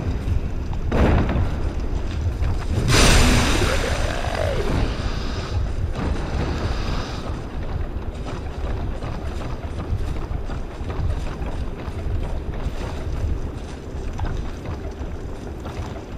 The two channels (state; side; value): identical; both; correlation 1.00